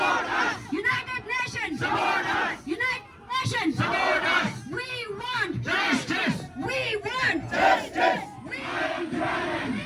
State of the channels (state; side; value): identical; both; correlation 1.00